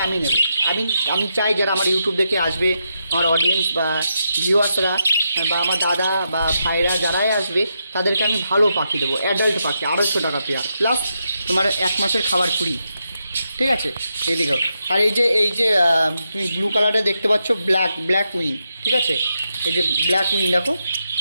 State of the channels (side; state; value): both; inverted; correlation -0.84